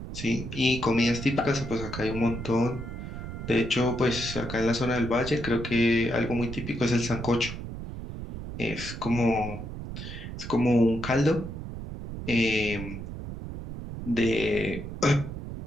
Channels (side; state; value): right; noise; rumble, 8 dB below the sound